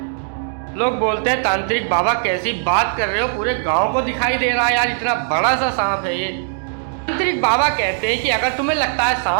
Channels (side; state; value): left; silent; digital silence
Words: लोग बोलते हैं तांत्रिक बाबा कैसी बात कर रहे हो, पूरे गांव को दिखाई दे रहा है यार, इतना बड़ा सा सांप है ये। तांत्रिक बाबा कहते हैं कि अगर तुम्हें लगता है